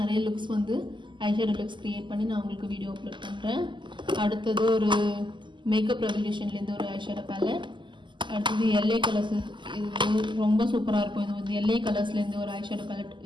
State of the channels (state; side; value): late; left; 0.23 ms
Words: நிறைய லுக்ஸ் வந்து ஐஷேடோ லுக்ஸ் கிரியேட் பண்ணி நான் உங்களுக்கு வீடியோ அப்லோட் பண்ணுறேன். அடுத்தது ஒரு மேக்கப் ரெவல்யூஷன்லேருந்து ஒரு ஐஷேடோ பேலட். அடுத்தது எல்ஏ கலர்ஸ். இது ரொம்ப சூப்பராக இருக்கும். இது வந்து எல்ஏ கலர்ஸ்லேருந்து ஒரு ஐஷேடோ பேலட்.